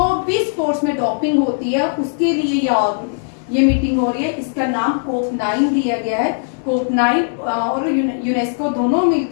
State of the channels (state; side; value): silent; right; digital silence